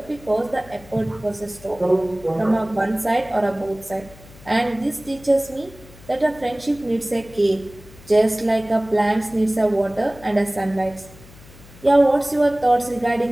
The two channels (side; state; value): left; noise; hum, 21 dB below the sound